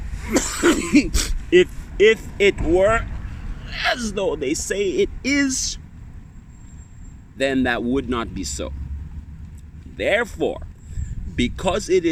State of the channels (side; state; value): both; identical; correlation 1.00